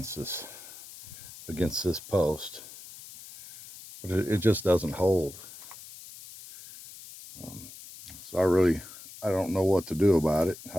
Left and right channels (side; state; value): left; noise; hiss, 16 dB below the sound